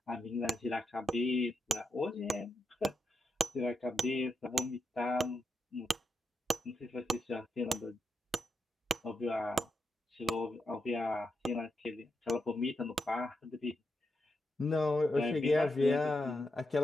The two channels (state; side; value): normal; both; correlation 0.84